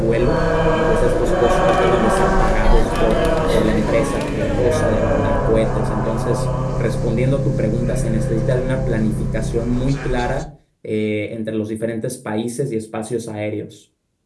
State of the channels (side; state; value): both; identical; correlation 1.00